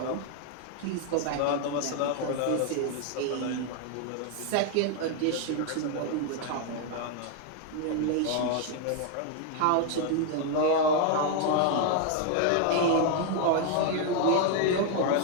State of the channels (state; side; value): different; both; correlation 0.00